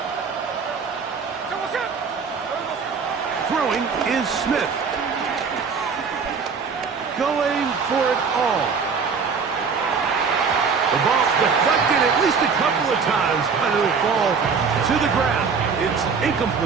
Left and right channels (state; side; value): quieter; left; 5.6 dB